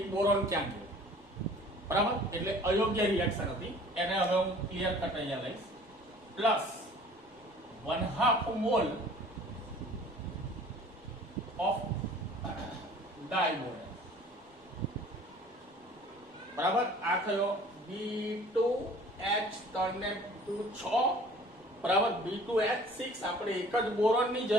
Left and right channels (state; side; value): normal; both; correlation 0.49